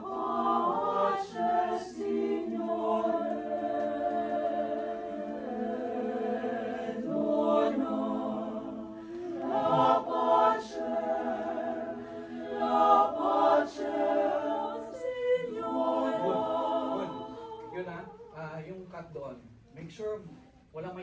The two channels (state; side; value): identical; both; correlation 1.00